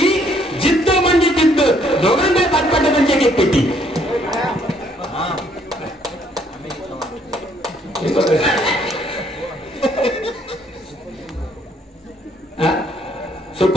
जिद्द म्हणजे जिद्द. दोघांकडे 5-5 डझनची एक पेटी.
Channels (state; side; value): normal; both; correlation 0.66